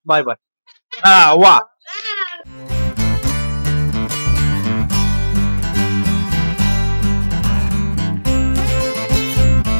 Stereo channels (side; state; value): both; inverted; correlation -1.00